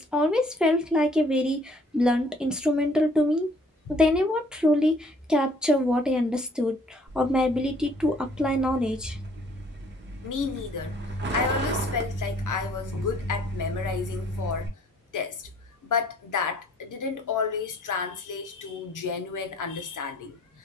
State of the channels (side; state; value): both; normal; correlation 0.59